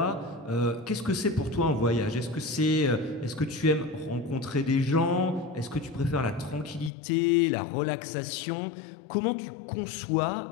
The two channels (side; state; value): right; drops out; at 6.9 s